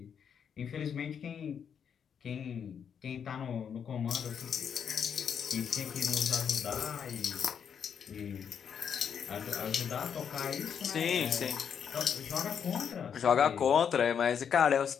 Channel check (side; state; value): right; quieter; 7.6 dB